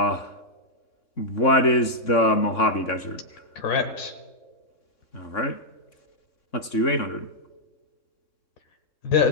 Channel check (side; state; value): right; late; 3.6 ms